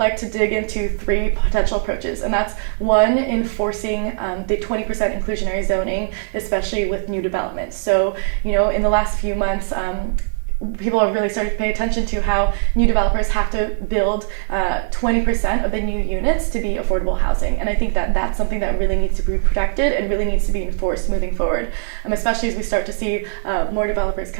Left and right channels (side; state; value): left; silent; 57 dB below the other